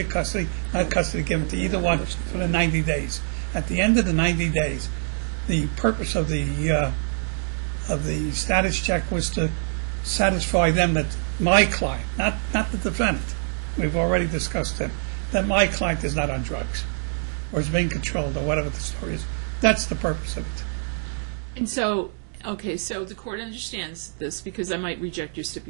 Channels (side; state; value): left; silent; 62 dB below the other